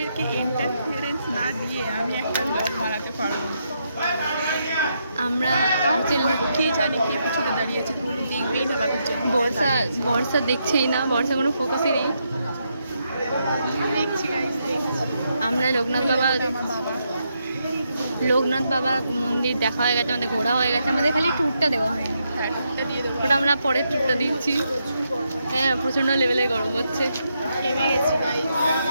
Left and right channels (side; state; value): both; inverted; correlation -0.80